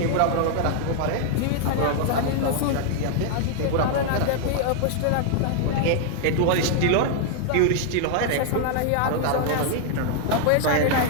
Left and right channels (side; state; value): both; different; correlation 0.00